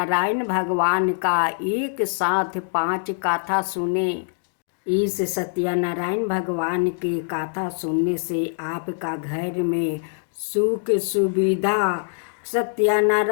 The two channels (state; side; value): silent; right; digital silence